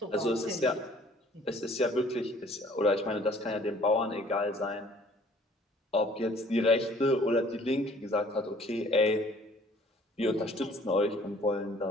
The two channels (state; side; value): normal; both; correlation 0.56